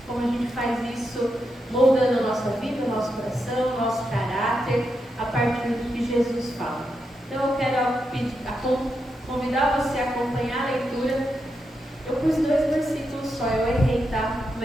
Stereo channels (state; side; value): normal; both; correlation 0.85